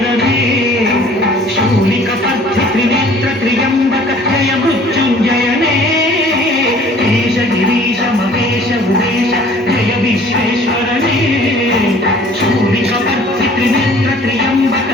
ಶೂಲಿಕ ಪರ್ಥಿ ತ್ರಿನೇತ್ರ ತ್ರಿಯಂಬಕ ಜಯ ಮೃತ್ಯುಂಜಯನೇ ಈಶ ಗಿರೀಶ ಮಹೇಶ ಉಮೇಶ ಜಯ ವಿಶ್ವೇಶ್ವರನೇ ಶೂಲಿಕ ಪರ್ಥಿ ತ್ರಿನೇತ್ರ ತ್ರಿಯಂಬಕ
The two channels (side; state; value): both; normal; correlation 0.52